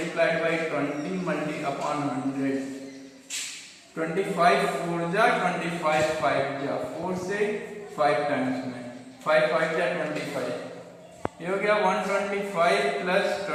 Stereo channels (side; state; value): both; identical; correlation 1.00